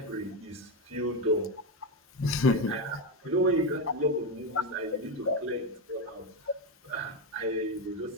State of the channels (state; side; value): normal; both; correlation 0.10